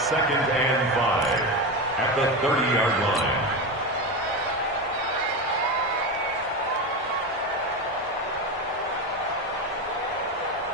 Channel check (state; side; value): normal; both; correlation 0.18